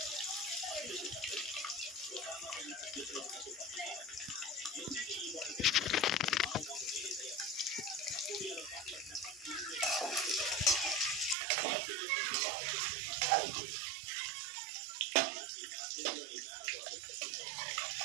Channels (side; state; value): left; drops out; at 11.4 s